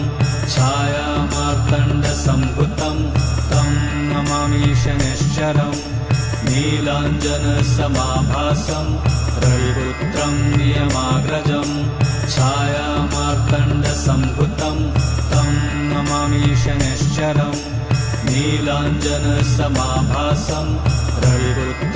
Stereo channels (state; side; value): identical; both; correlation 1.00